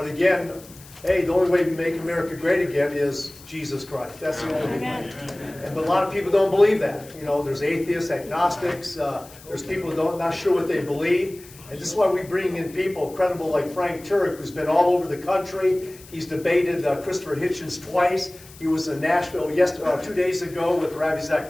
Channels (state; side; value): noise; left; hiss, 21 dB below the sound